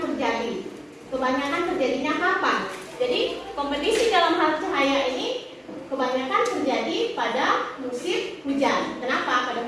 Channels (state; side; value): identical; both; correlation 1.00